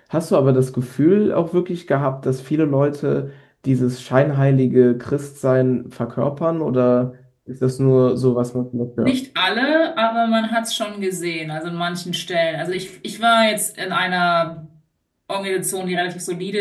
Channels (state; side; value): identical; both; correlation 1.00